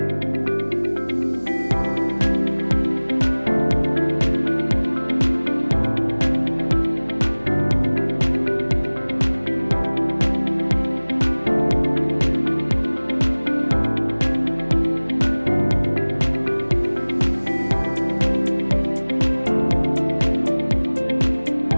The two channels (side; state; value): both; inverted; correlation -1.00